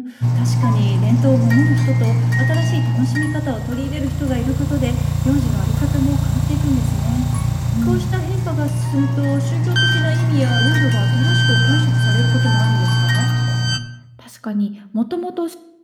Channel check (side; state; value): both; identical; correlation 1.00